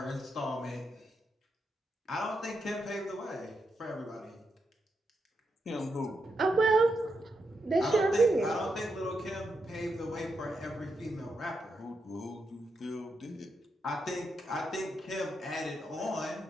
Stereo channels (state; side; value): normal; both; correlation 0.84